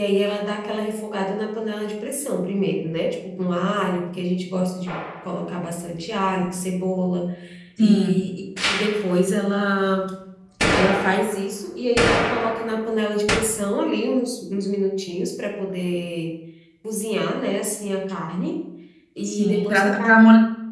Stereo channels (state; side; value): identical; both; correlation 1.00